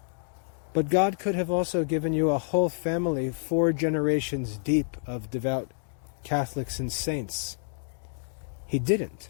But God could have also given you a whole family, 4 generations deep of devout Catholics and saints. He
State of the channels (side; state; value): right; silent; digital silence